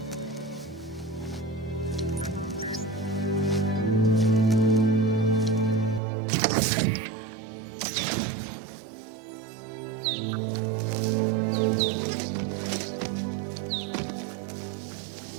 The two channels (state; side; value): drops out; left; at 6.0 s